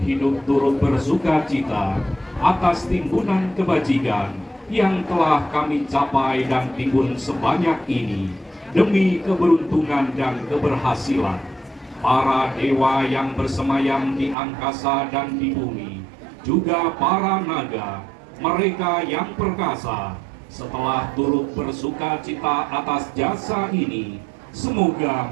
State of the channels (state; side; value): drops out; left; at 14.4 s